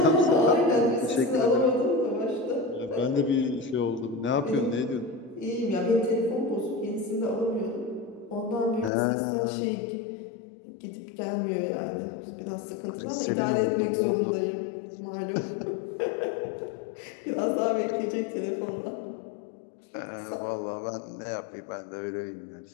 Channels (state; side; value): drops out; right; at 8.9 s